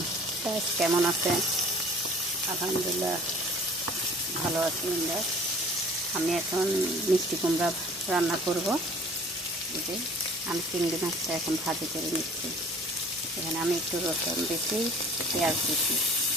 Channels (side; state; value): both; normal; correlation 0.49